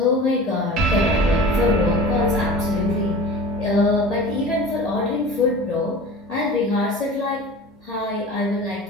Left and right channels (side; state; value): both; normal; correlation 0.38